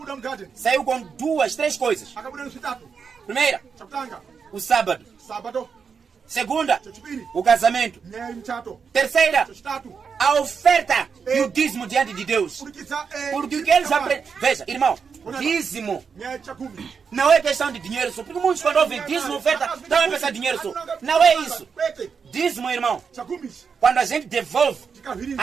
saiu com 2, 3 coisas. Primeira, o sábado. Segunda, o casamento. Terceira, a oferta e o dízimo diante de Deus. Porque o que eles aprendem... Veja, irmão, dízimo não é questão de dinheiro só. Porque muitos quando ouvem dízimo, oferta, não é pensar dinheiro só. Não é isso. Dízimo, irmão, quando a gente devolve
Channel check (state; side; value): quieter; left; 6.0 dB